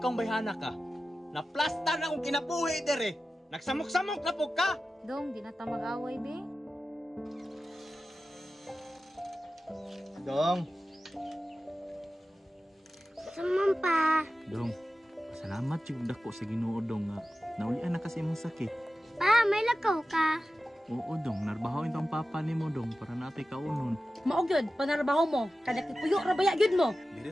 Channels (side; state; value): both; normal; correlation 0.94